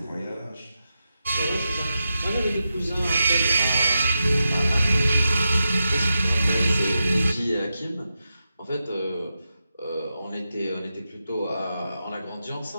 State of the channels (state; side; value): inverted; both; correlation -0.88